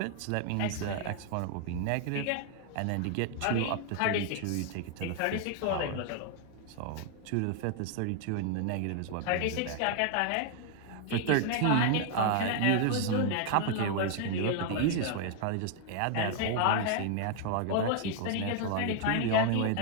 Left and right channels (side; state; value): both; different; correlation 0.00